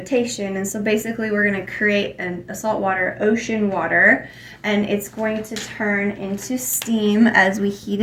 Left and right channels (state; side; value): identical; both; correlation 1.00